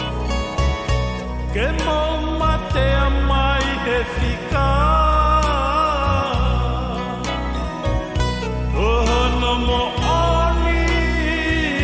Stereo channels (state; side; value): identical; both; correlation 1.00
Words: Ke mo matea mai he whika Ohono mo oni